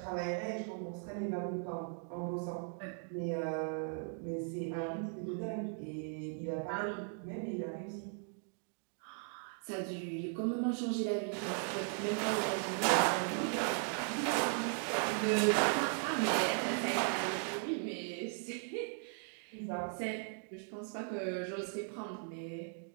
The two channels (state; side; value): silent; left; 53 dB below the other